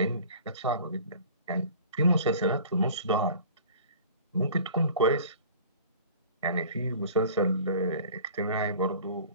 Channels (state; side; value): inverted; both; correlation -0.44